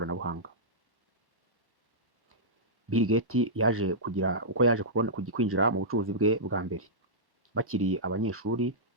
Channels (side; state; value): left; late; 1.1 ms